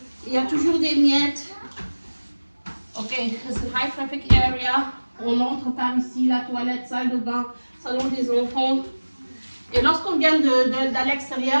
Il y a toujours des miettes. Ok, c'est high traffic area. On entre par ici, la toilette, salle de bain, salon des enfants. Et lorsqu'on vient de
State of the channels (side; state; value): both; inverted; correlation -1.00